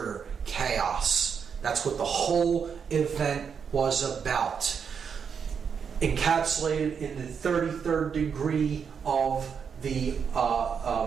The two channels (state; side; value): quieter; left; 6.7 dB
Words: chaos. That's what the whole event was about. Encapsulated in the 33rd degree of the